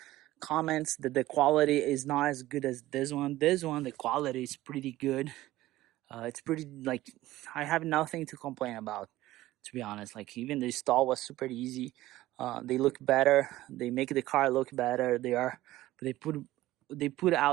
comments that the quality is not as good as this one. This one, the quality is pretty good. It's pretty, like, I have nothing to complain about, to be honest. Like, even the install was super easy. They look better. They make the car look better. They put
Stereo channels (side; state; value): left; quieter; 16.2 dB